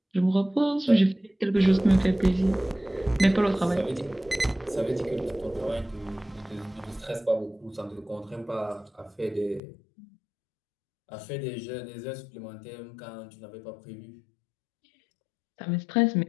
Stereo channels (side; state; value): right; drops out; at 9.6 s